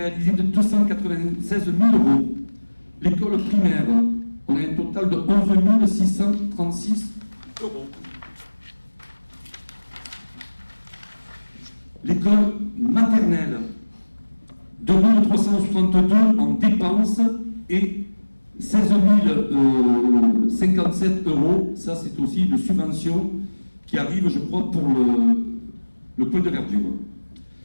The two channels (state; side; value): inverted; both; correlation -1.00